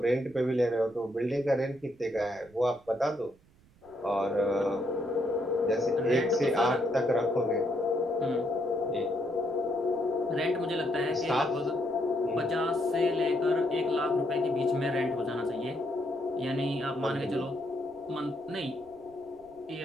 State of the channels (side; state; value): right; noise; rumble, 29 dB below the sound